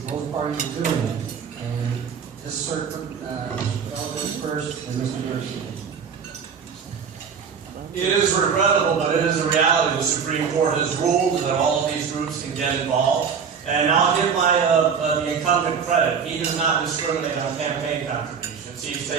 parties are doing it, and this circuit, Mr. first, and Mr. Garcia. It is regrettable, but it is a reality. The Supreme Court has ruled that all of these groups can get involved. And I'll give the incumbent credit. He does not discriminate on campaign contributions. He's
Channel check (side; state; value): left; quieter; 6.5 dB